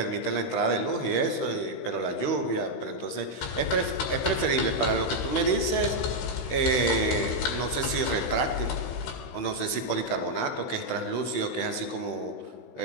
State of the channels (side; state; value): right; late; 16 ms